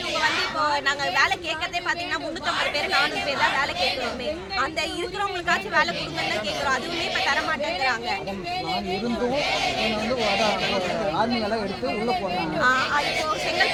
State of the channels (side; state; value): both; identical; correlation 1.00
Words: வந்து இப்போ நாங்கள் வேலை கேட்கறதே பார்த்தீங்கன்னா 350 பேர் 400 பேர் தான் வேலை கேட்குறோமே. அந்த இருக்கிறவங்களுக்காச்சும் வேலை கொடுங்கன்னு தான் கேட்குறோம். அதுவுமே இப்போ தர மாட்டேங்கிறாங்க. ஆர்மியெல்லாம் எடுத்து உள்ள போறாங்க. இப்போ